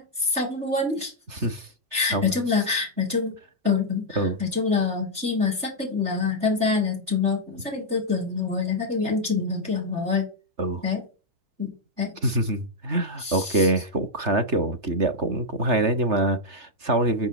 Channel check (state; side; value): late; left; 3.3 ms